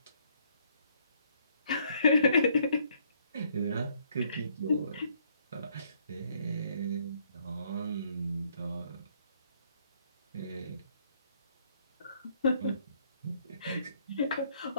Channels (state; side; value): inverted; both; correlation -0.67